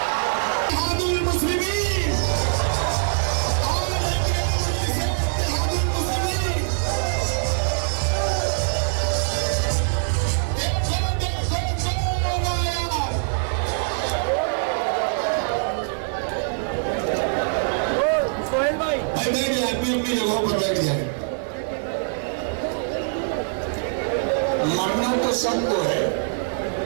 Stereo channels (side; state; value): left; silent; 63 dB below the other